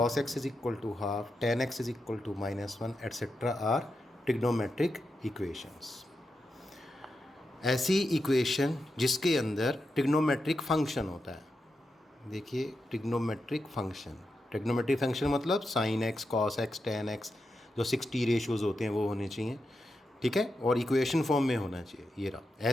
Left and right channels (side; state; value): both; normal; correlation 0.88